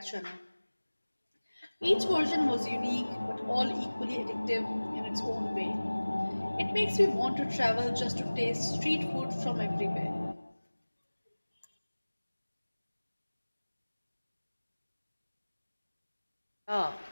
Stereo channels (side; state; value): both; inverted; correlation -1.00